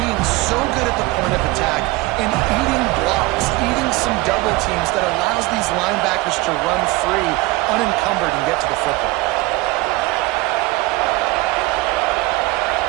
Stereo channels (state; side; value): quieter; left; 21.1 dB